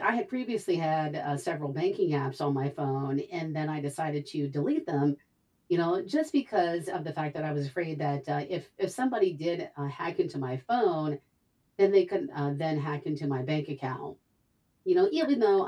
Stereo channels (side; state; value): both; identical; correlation 1.00